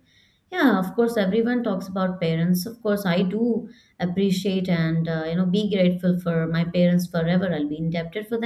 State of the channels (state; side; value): identical; both; correlation 1.00